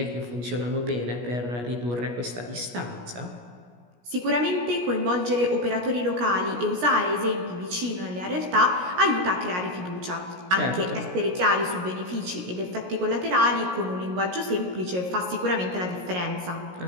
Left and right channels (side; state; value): left; late; 17 ms